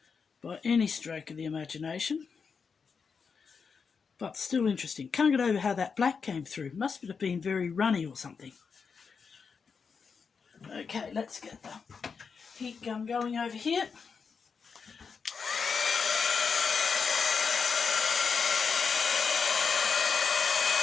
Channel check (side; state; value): right; quieter; 5.7 dB